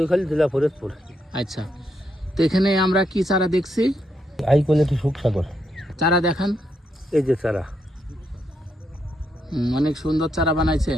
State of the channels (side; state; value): both; normal; correlation 0.79